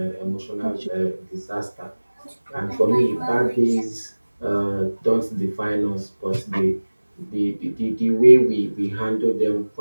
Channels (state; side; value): inverted; both; correlation -1.00